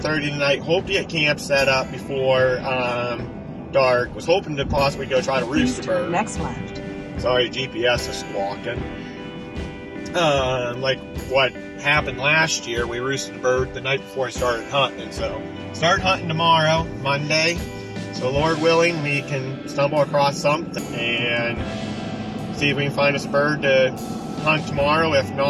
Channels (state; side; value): identical; both; correlation 1.00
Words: tonight. Hope to get camp set up before dark. Was hoping to possibly go try to roost a bird. Next left. Sorry, GPS is squawking. Like what happened last year, we roosted a bird the night before I started hunting. So start hunting tomorrow, Monday. So Lord willing, we can stumble across something and see if we can find us a bird to hunt tomorrow. If